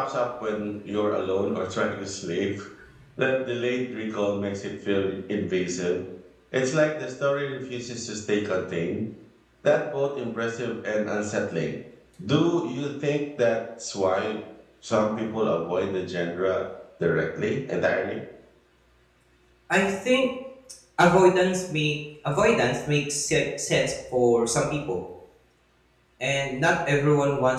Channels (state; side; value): identical; both; correlation 1.00